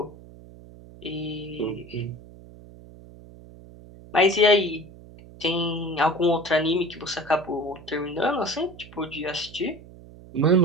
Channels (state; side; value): noise; right; hum, 19 dB below the sound